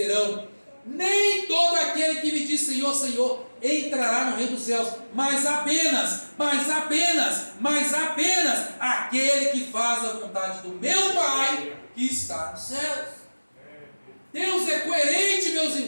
Nem todo aquele que me diz Senhor, Senhor entrará no reino dos céus, mas apenas aquele que faz a vontade do meu Pai que está nos céus. Deus é coerente, meus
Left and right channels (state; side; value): inverted; both; correlation -1.00